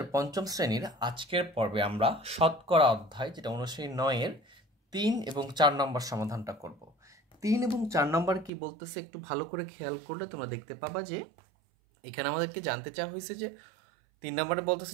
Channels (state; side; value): drops out; left; at 8.5 s